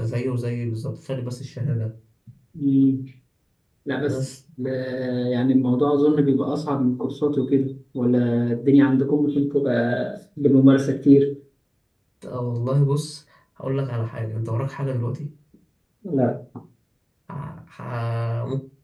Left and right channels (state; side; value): identical; both; correlation 1.00